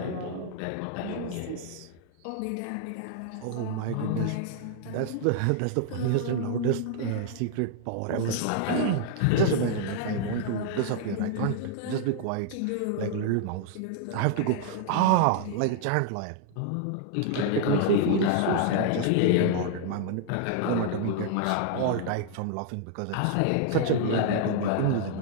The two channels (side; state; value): both; different; correlation 0.00